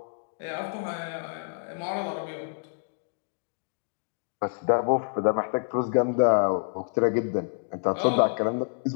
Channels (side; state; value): right; silent; digital silence